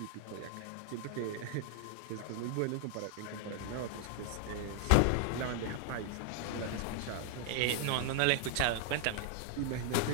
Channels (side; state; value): both; different; correlation 0.00